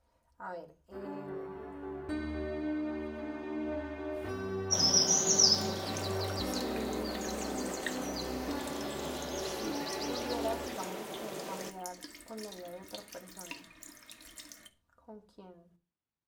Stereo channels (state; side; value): identical; both; correlation 1.00